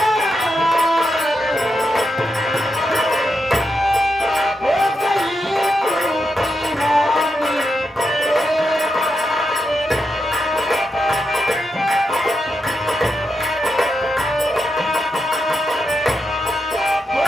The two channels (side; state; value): both; normal; correlation 0.85